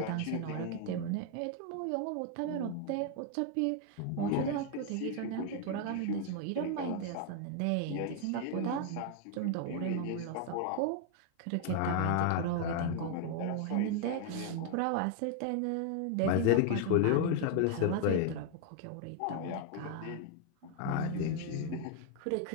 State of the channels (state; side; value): different; both; correlation 0.00